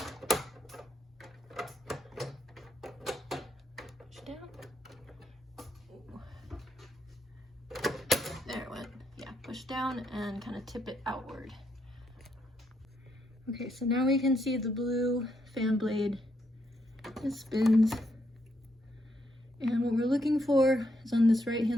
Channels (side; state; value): both; normal; correlation 0.78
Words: Push down. Ooh. There it went. Yeah, push down and kind of tip it outward. Okay, so now we can see the blue fan blade. It spins. And what we're looking for is on this right